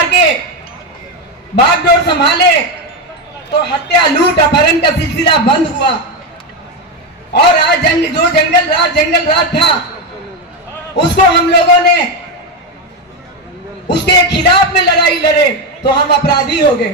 के बागडोर संभाले, तो हत्या लूट अपहरण का सिलसिला बंद हुआ। और आज जो जंगल राज था, उसको हम लोगों ने उसके खिलाफ में लड़ाई लड़े तो हम अपराधी हो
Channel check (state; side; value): normal; both; correlation 0.11